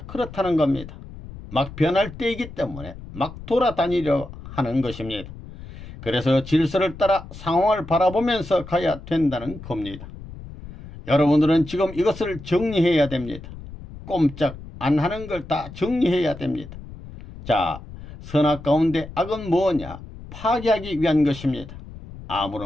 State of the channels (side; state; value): left; noise; rumble, 14 dB below the sound